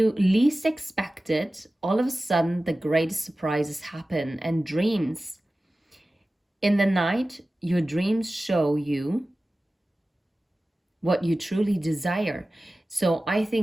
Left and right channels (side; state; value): both; normal; correlation 0.96